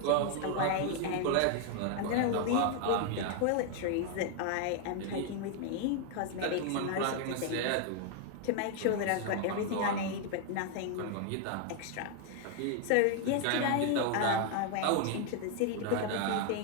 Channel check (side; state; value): both; different; correlation 0.00